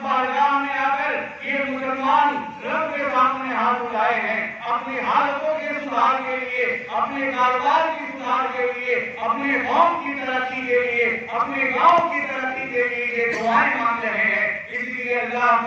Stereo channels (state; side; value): identical; both; correlation 1.00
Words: بارگاہ میں آ کر یہ مسلمان رب کے سامنے ہاتھ اٹھائے ہیں اپنی حالتوں کے سدھار کے لیے، اپنے کاروبار کی سدھار کے لیے، اپنے قوم کی ترقی کے لیے، اپنے گاؤں کی ترقی کے لیے یہ دعائیں مانگ رہے ہیں۔ اس لیے اللہ